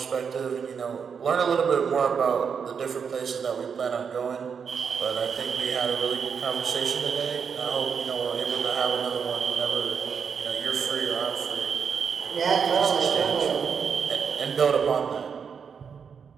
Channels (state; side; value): quieter; left; 6.5 dB